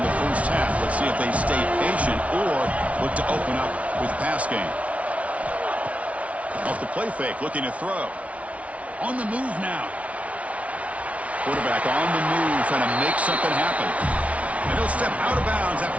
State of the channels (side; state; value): left; late; 0.065 ms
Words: the first half. Let's see if they stay patient or look to open up with pass game. Off the play fake, looking to throw. On the move now. Quarterback on the move, trying to make something happen. And he'll step out of bounds